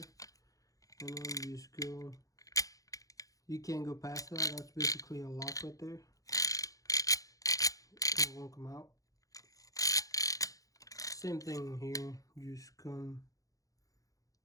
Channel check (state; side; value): late; right; 0.17 ms